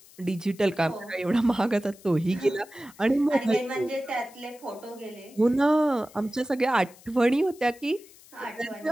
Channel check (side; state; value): left; noise; hiss, 24 dB below the sound